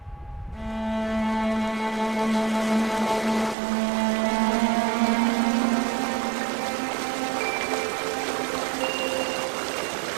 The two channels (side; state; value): left; drops out; at 3.6 s